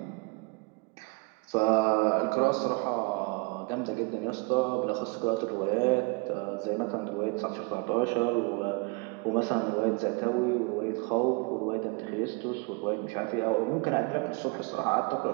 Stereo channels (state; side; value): quieter; left; 30.7 dB